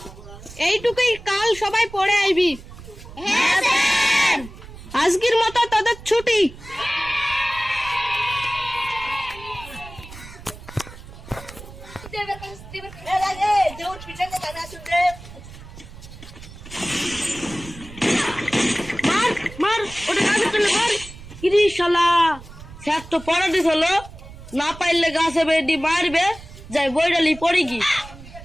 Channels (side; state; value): right; noise; rumble, 16 dB below the sound